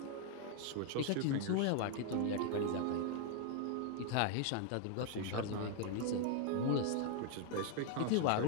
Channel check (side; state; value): both; different; correlation 0.00